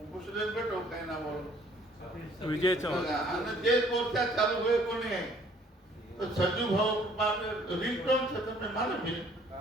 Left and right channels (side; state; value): both; normal; correlation 0.59